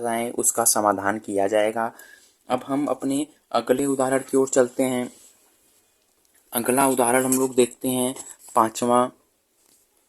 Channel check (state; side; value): identical; both; correlation 1.00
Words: उसका समाधान किया जाएगा। अब हम अपने अगले उदाहरण की ओर चलते हैं। अगला उदाहरण हम लोग देखते हैं 5वां।